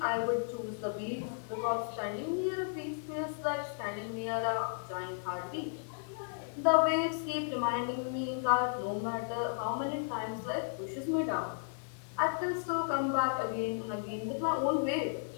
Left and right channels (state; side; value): silent; right; digital silence